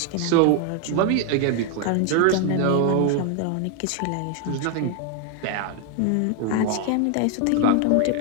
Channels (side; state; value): both; different; correlation 0.01